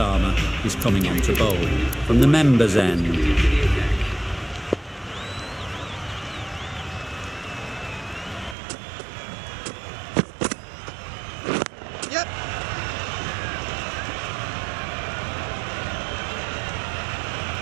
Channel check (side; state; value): left; drops out; at 8.6 s